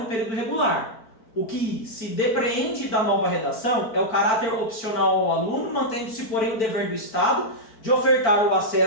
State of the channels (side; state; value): right; late; 4.5 ms